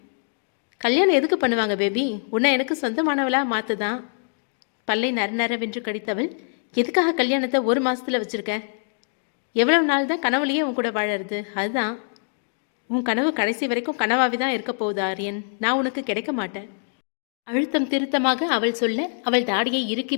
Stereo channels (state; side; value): silent; right; 63 dB below the other